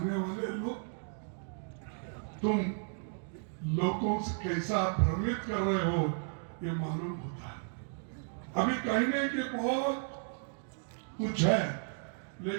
वाले लोग तुम लोगों से कैसा भ्रमित कर रहे हो ये मालूम होता है। अभी कहने के बहुत कुछ है,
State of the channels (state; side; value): silent; left; 55 dB below the other